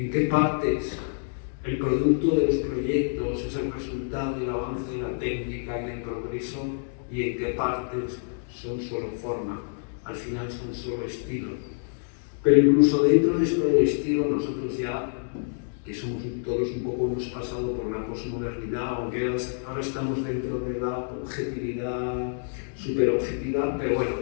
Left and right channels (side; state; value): right; silent; digital silence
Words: qué partes el producto de los proyectos es el resultado del avance de la técnica y del progreso, y en qué partes son solo forma, al final son solo estilo. Pero incluso dentro de esto del estilo, nosotros ya, que somos todos un poco, hemos pasado por la posmodernidad, aunque ahora estamos dentro de la objetividad, superobjetividad, pero bueno,